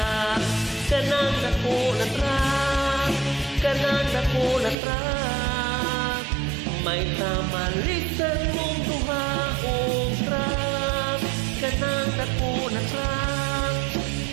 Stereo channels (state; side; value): drops out; left; at 4.8 s